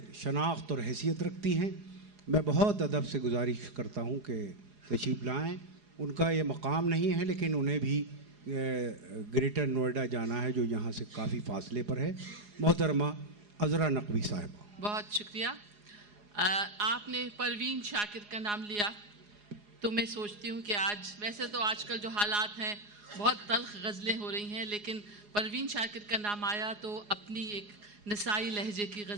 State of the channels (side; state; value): left; late; 4.8 ms